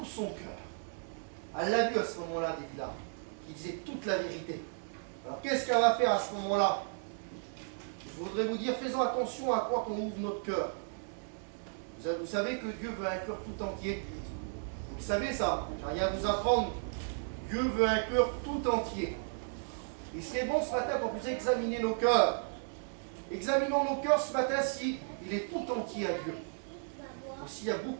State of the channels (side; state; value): left; silent; digital silence